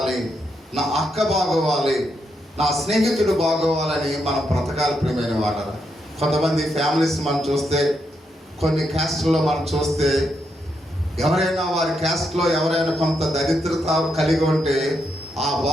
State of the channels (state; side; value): normal; both; correlation 0.80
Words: నా అక్క బాగోవాలి, నా స్నేహితుడు బాగోవాలని మనం బ్రతకాలి ప్రియమైన వారు. కొంతమంది ఫ్యామిలీస్ మనం చూస్తే, కొన్ని క్యాస్ట్లో మనం చూస్తే, ఎవరైనా వారి క్యాస్ట్లో ఎవరైనా కొంత దరిద్రత కలిగి ఉంటే ఆ